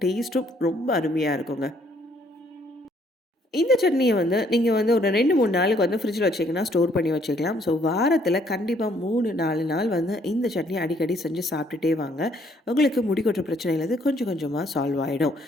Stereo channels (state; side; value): normal; both; correlation 0.66